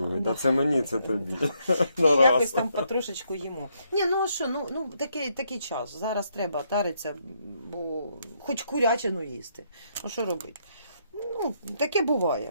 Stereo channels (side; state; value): both; inverted; correlation -0.75